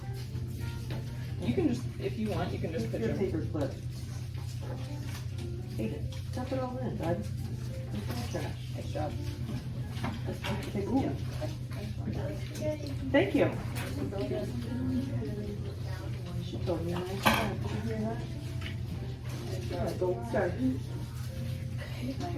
You can just, if you want, you can just put Your your paper clip. Hey, stuff it all in, bud. It's trash. nice job. Ooh. Thank you. She told me a nice time. Did you hear that? Gold star.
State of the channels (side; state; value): both; identical; correlation 1.00